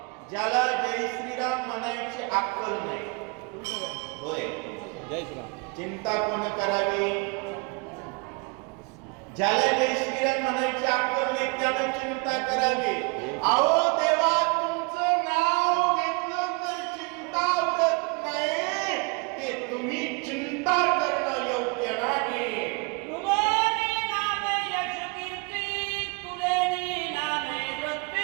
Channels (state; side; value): quieter; left; 30.8 dB